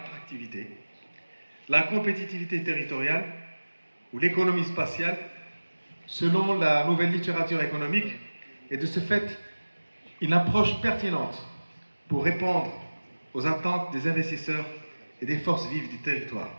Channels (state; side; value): inverted; both; correlation -1.00